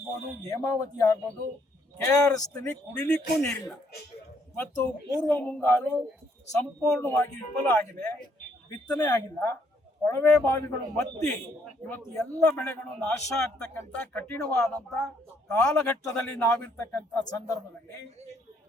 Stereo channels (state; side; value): normal; both; correlation 0.69